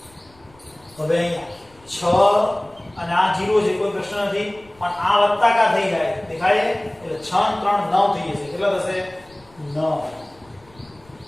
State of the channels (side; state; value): left; noise; rumble, 28 dB below the sound